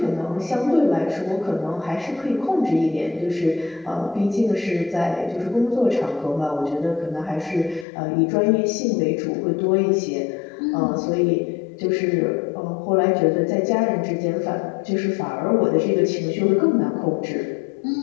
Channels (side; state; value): right; drops out; at 7.9 s